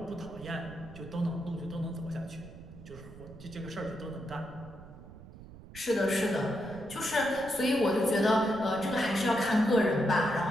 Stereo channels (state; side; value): noise; right; rumble, 17 dB below the sound